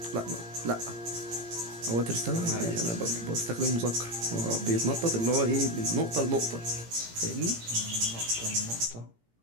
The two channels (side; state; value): left; late; 17 ms